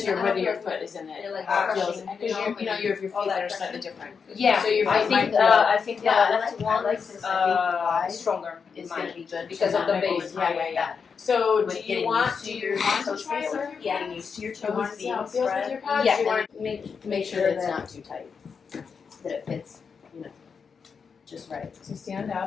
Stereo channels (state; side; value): quieter; right; 5.9 dB